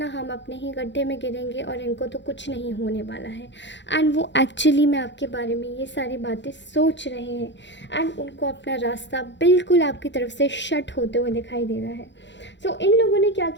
हम अपने ही गड्ढे में गिरेंगे और इनको तो कुछ नहीं होने वाला है। एंड वो एक्चुअली में आपके बारे में ये सारी बातें सोच रहे हैं एंड उनको अपना रास्ता बिल्कुल आपकी तरफ से शट होते हुए दिखाई दे रहा है। सो इन लोगों ने क्या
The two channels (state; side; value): late; right; 0.52 ms